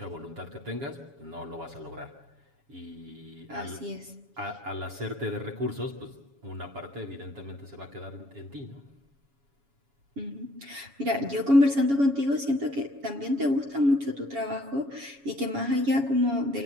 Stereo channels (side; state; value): left; late; 7.2 ms